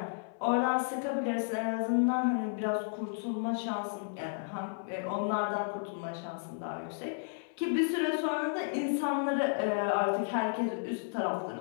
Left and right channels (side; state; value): right; silent; 56 dB below the other